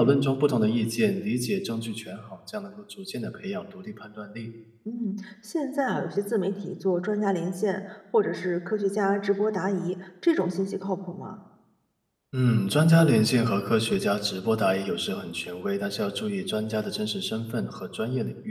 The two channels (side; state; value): both; identical; correlation 1.00